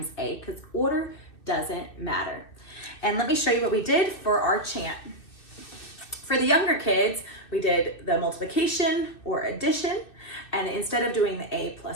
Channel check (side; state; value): right; late; 2.6 ms